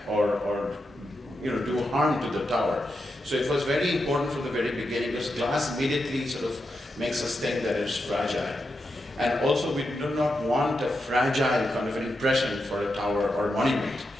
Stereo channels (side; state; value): both; normal; correlation 0.86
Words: or do harm to the tower. So it was very important from the very beginning because glass immediately sort of makes us think that it's fragile. And also we do not want a fragile kind of an impression for a tower or monument.